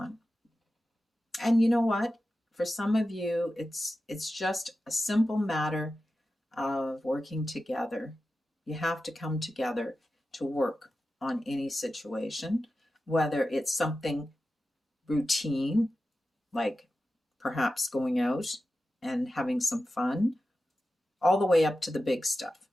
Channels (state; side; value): normal; both; correlation 0.93